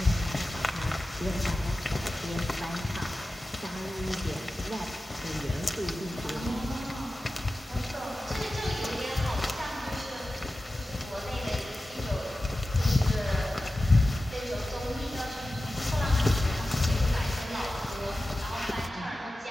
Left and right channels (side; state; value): both; normal; correlation 0.94